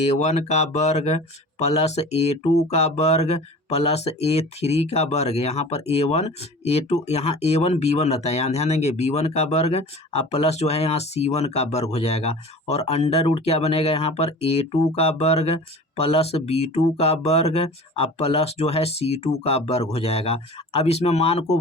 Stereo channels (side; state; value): both; normal; correlation 0.39